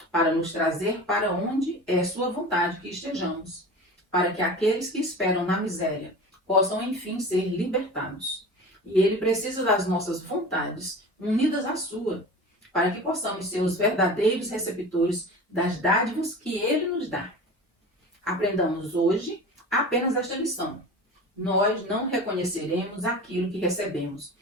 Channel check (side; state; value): both; normal; correlation 0.35